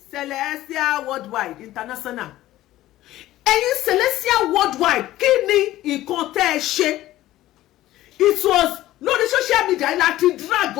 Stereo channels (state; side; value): quieter; right; 15.2 dB